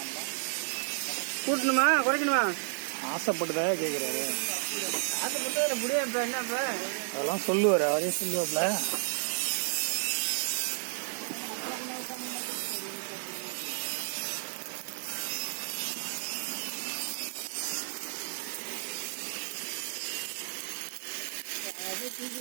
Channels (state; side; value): silent; left; 56 dB below the other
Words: கூட்டணுமா குறைக்கணுமா? ஆசைப்பட்டுதான் கேட்குறாரு. ஆசைப்பட்டு முடியும். இப்போ என்னப்ப அதெல்லாம் சொல்லுவார், அவரே சொல்லுவாப்ல.